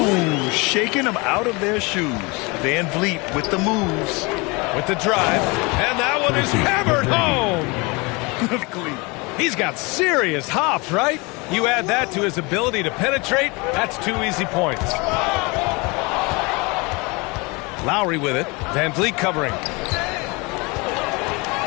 shaking them out of their shoes. Van Vliet with the moves. With the drive. And that one is hammered home. He's got serious hops, right? You add that to his ability to penetrate, that's 2 easy points. Lowry with it. Van Vliet covering.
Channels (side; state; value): right; quieter; 27.1 dB